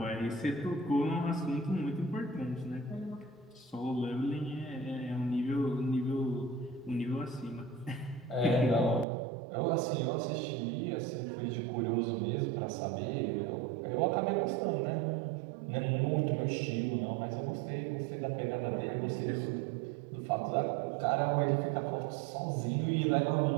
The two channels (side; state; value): left; drops out; at 9.1 s